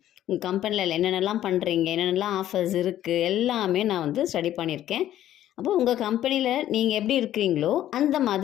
உங்கள் கம்பெனியில் என்னென்னலாம் பண்ணுறீங்க, என்னென்னலாம் ஆஃபர்ஸ் இருக்குது எல்லாமே நான் ஸ்டடி பண்ணியிருக்கேன். அப்போ உங்கள் கம்பெனியில் நீங்கள் எப்படி இருக்கிறீங்களோ அந்த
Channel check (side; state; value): right; quieter; 12.4 dB